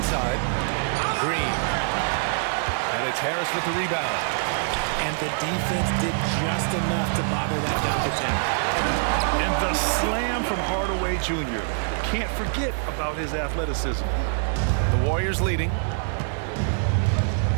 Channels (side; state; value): left; silent; digital silence